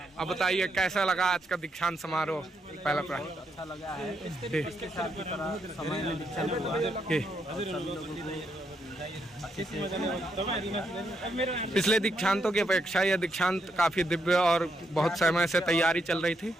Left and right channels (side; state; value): both; normal; correlation 0.78